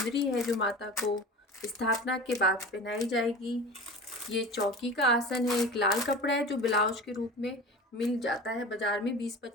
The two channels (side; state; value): both; normal; correlation 0.34